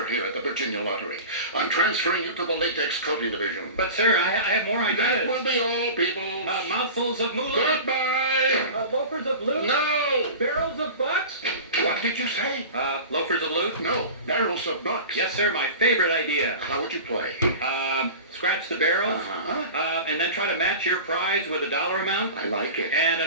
here at the Virginia Lottery. I'm transferring you to the latex coating division. But, sir, I have more That ideas. will be all, Peoples. Mouthfuls of moolah. Goodbye! Loafers of loot. No! Barrels of bucks. What did you say? Loafers of loot. No, barrels of bucks. Yes, sir, my favorite idea. How would you play? Scratch the barrels, Uh-huh. and then try to match your prize with a dollar amount. I like it. And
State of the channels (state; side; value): inverted; both; correlation -0.34